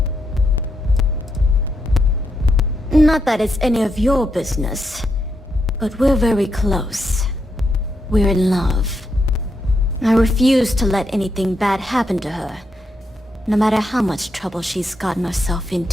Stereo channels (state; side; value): normal; both; correlation 0.81